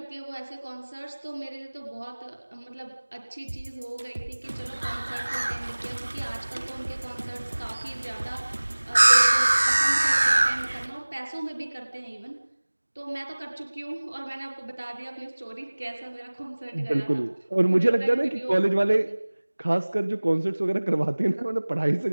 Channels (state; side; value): inverted; both; correlation -1.00